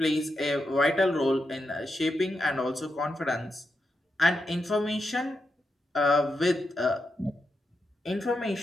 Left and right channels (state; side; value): normal; both; correlation 0.86